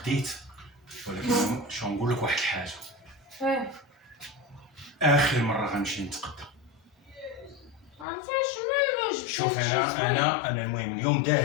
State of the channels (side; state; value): right; drops out; at 8.1 s